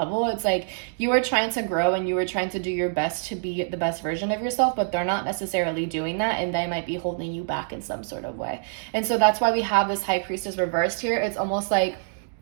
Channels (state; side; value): silent; left; digital silence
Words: It's like, you are trying to grow and you are trying to do your best to be the best version of yourself, but they're not necessarily doing that, and they might be holding you back in some sort of way. And so that's why we have this High Priestess reversed here. It's almost like